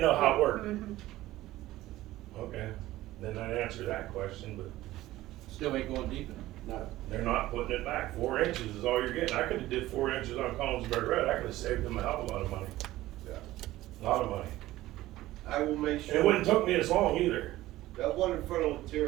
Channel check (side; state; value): left; quieter; 16.1 dB